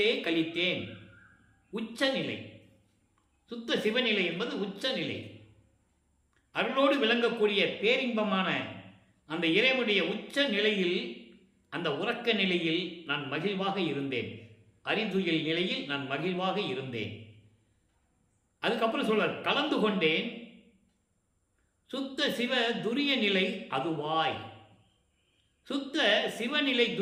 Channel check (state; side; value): identical; both; correlation 1.00